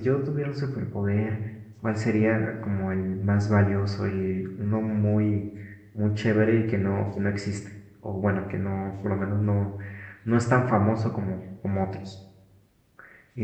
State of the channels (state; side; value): identical; both; correlation 1.00